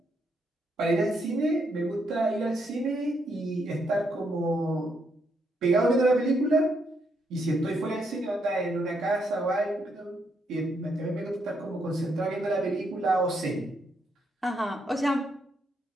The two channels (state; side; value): normal; both; correlation 0.77